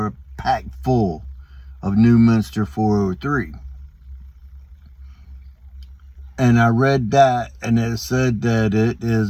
packed full of Newminster 403. And I read that, and it said that it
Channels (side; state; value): both; identical; correlation 1.00